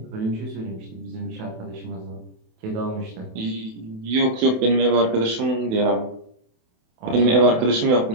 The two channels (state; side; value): late; left; 27 ms